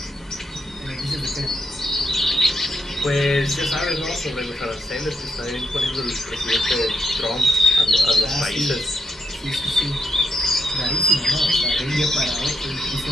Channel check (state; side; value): normal; both; correlation 0.80